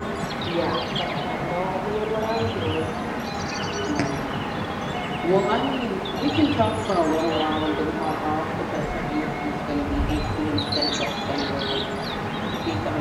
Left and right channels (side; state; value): both; identical; correlation 1.00